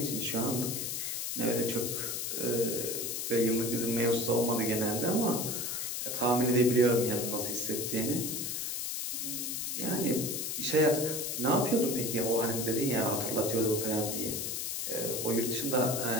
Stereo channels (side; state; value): left; noise; hiss, 2 dB below the sound